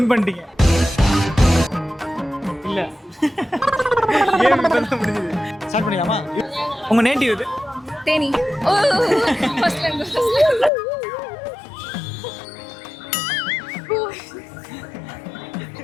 பண்ணிட்டீங்க. இல்ல. கேம் இப்பதான் முடிஞ்சது. ஸ்டார்ட் பண்ணிடலாமா? உங்க நேட்டிவ் இது? தேனி. ஓ ஃபர்ஸ்ட்ல இருந்து.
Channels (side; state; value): right; drops out; at 10.7 s